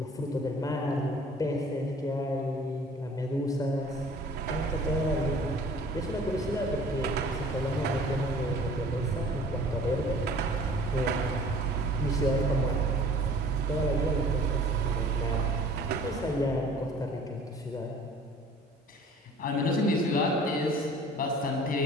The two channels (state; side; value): normal; both; correlation 0.50